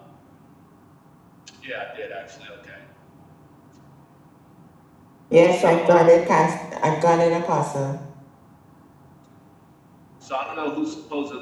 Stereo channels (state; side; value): identical; both; correlation 1.00